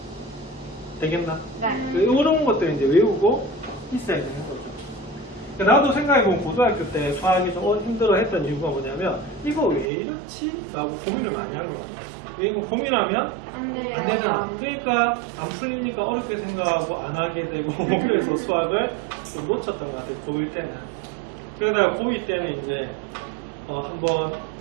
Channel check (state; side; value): drops out; left; at 9.9 s